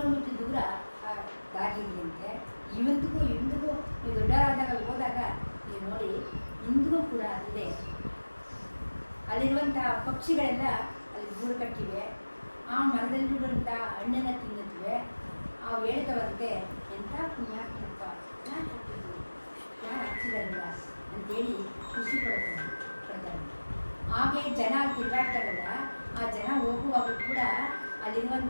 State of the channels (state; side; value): inverted; both; correlation -1.00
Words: ದೂರ ದಾರಿಯಂತೆ. ಇಂದಿಗೂ ನೀವು ದೊಡ್ಡರಾದಾಗ ಹೋದಾಗ ನೀವು ನೋಡಿ, ಇಂದಿಗೂ ಕೂಡ ಅಲ್ಲೇ ಅಲ್ಲಿರುವಂಥ ಪಕ್ಷಿಗಳೆಲ್ಲ ಅಲ್ಲಿ ಗೂಡು ಕಟ್ಟಿವೆ. ಆ ಮರದಲ್ಲಿರುವಂಥ ಹಣ್ಣನ್ನು ತಿನ್ನುತ್ತವೆ. ಆ ಹೇಳ್ತವಂತೆ ಎಂಥ ಪುಣ್ಯಾತ್ಮಕ ಯಾರು ಹಚ್ಚಿದ್ರು, ಯಾರು ಹಚ್ಚಿರಲ್ಲ ಅಂತೇಳಿ ಖುಷಿ ಪಡ್ತಾರೆ. ಹಾಗೆ ಜನ ತಿರುಗಾಡ್ತಾರಲ್ಲ, ಆ ಜನ ಹೋಗುವಾಗ ಕೂಡ